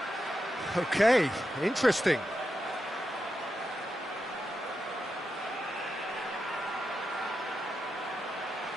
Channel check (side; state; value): both; normal; correlation 0.87